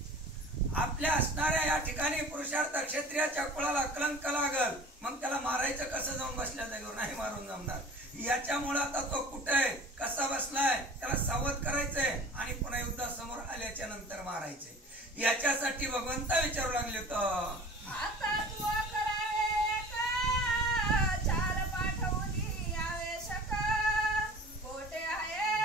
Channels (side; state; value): both; normal; correlation 0.42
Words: आपल्या असणाऱ्या या ठिकाणी पुरुषार्थ क्षत्रियाच्या कुळाला कलंक लागल, मग त्याला मारायचं कसं जाऊन बसल्या जागेवर नाही मारून जमणार. याच्यामुळे आता तो कुठे आहे, कसा बसलाय, त्याला सावध करायचंय आणि पुन्हा युद्धासमोर आल्याच्या नंतर मारायचे. याच्यासाठी भगवंत विचारू लागले तर